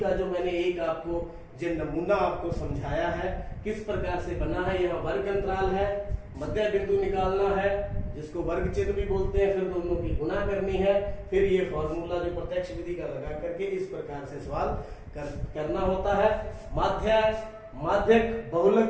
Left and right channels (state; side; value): identical; both; correlation 1.00